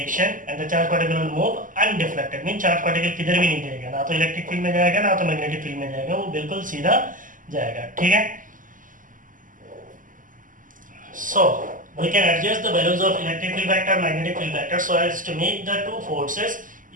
and the charge particle will move undeflected. Mean charge particle किधर भी नहीं जाएगा, ना तो इलेक्ट्रिक फील्ड में जाएगा ना तो मैग्नेटिक फील्ड में जाएगा, वो बिल्कुल सीधा जाएगा. ठीक है. So we can adjust the values of electric field vector, magnetic field vector so as to make the two forces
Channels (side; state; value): left; late; 0.38 ms